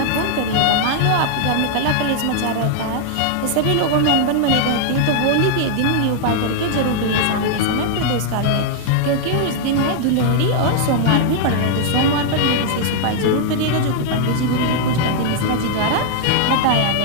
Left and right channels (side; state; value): both; different; correlation -0.01